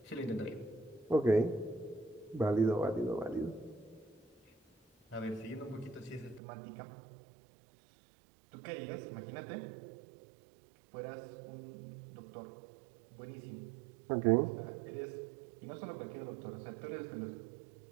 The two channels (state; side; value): drops out; left; at 6.4 s